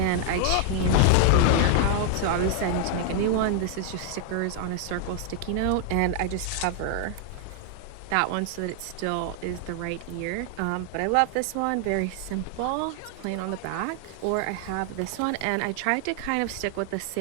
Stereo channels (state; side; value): different; both; correlation 0.00